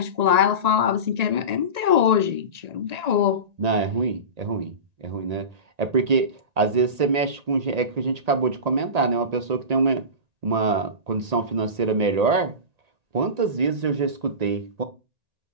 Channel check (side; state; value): left; late; 1.8 ms